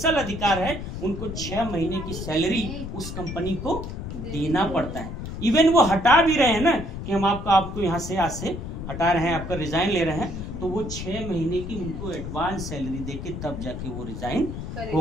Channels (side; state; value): left; noise; rumble, 7 dB below the sound